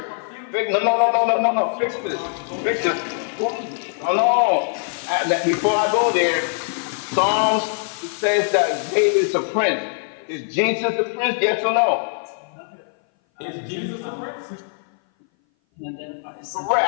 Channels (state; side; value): silent; right; 59 dB below the other